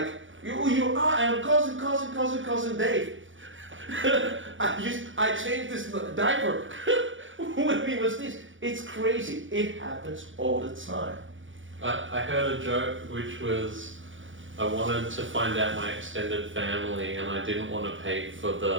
You are, I'm cousin Dave. I changed this diaper when he was this. It's crazy. It happens all the time. I heard a joke which was, I wanted to find out my extended family and I didn't want to pay for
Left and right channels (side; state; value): left; late; 0.56 ms